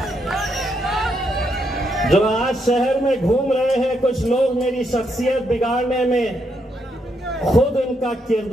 जो आज शहर में घूम रहे हैं कुछ लोग मेरी शख्सियत बिगाड़ने में, खुद उनका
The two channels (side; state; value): both; normal; correlation 0.78